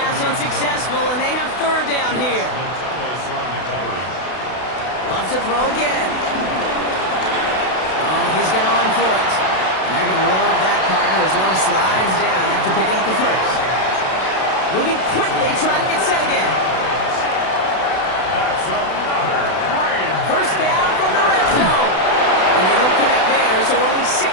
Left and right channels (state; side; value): late; right; 32 ms